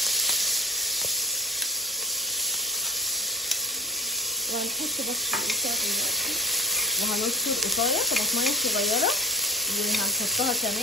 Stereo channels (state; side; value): normal; both; correlation 0.41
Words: وهنحط بس القطع دلوقتي، وهنذكر قطايه طماطميه صغيره وهنحطها